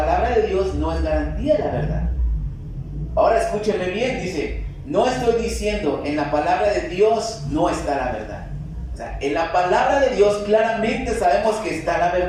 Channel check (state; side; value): identical; both; correlation 1.00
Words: de Dios no es garantía de la verdad. Ahora escúcheme bien, dice, no estoy diciendo, en la palabra de Dios no está la verdad. O sea, en la palabra de Dios claramente sabemos que está la